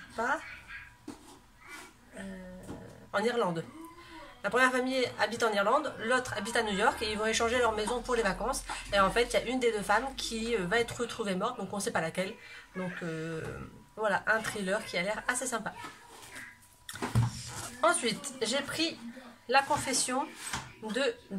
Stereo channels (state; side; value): identical; both; correlation 1.00